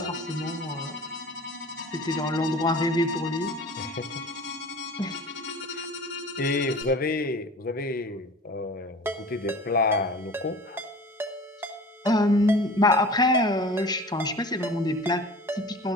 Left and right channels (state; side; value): normal; both; correlation 0.40